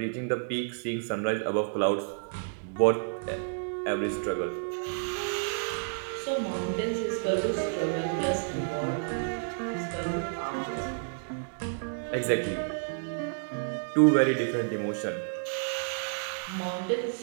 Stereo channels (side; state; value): left; silent; digital silence